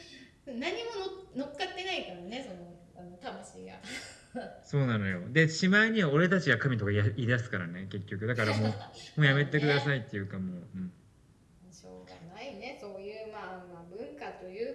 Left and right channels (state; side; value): identical; both; correlation 1.00